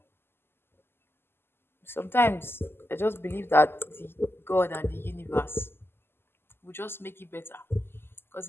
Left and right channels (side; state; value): right; late; 0.11 ms